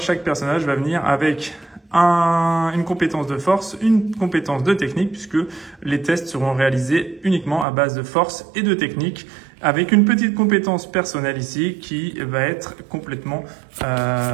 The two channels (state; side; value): drops out; left; at 7.7 s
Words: personnage va venir avec une compétence de force, une compétence de technique, puisque les tests seront réalisés uniquement à base de force et de technique, avec une petite compétence personnelle ici qui va être complètement